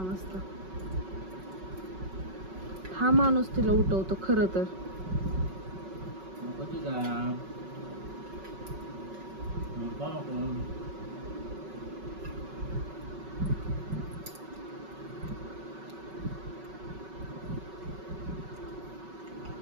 वाजता हा माणूस तिला उठवतो खरं तर.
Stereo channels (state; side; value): late; left; 5.3 ms